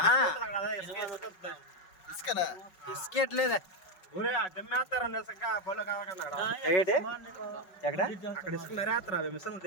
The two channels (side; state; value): right; late; 5.4 ms